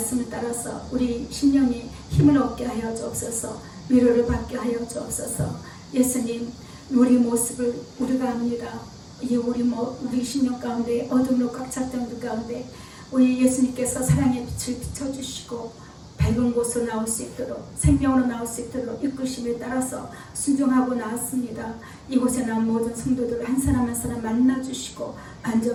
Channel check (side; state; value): both; identical; correlation 1.00